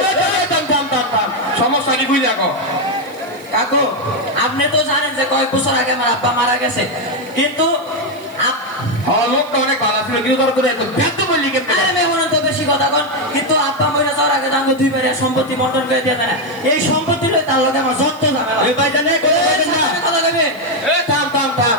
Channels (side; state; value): right; noise; hiss, 27 dB below the sound